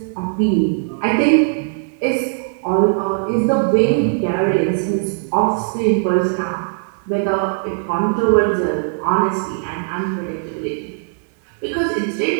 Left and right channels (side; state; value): left; silent; 66 dB below the other